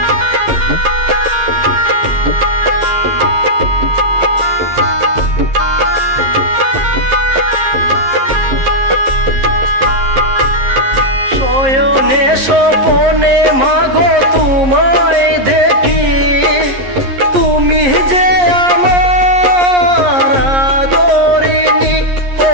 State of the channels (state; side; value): late; left; 11 ms